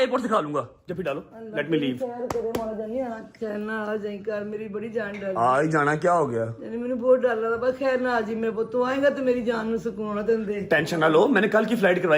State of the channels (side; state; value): both; identical; correlation 1.00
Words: से खा लूंगा। जब भी डालो, लेट मी लीव। खैर करे मां जानी, खैर ना आ जाई कर, मेरी बड़ी जान डर आज जाना क्या हो गया? यानी मैंने बहुत डर लगा, बस खैर ना आ जी मेरे पुੱਤ, तू आएगा तो मेरी जान ਨੂੰ सुकून दे। टेंशन ना लो, मैंने कल की फ्लाइट